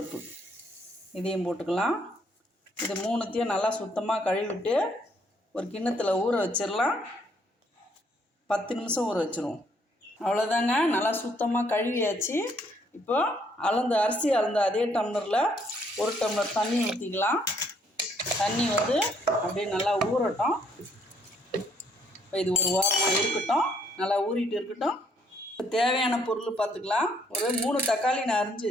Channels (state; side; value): normal; both; correlation 0.68